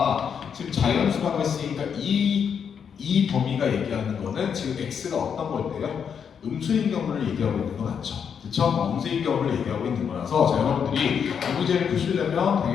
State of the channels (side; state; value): right; quieter; 7.3 dB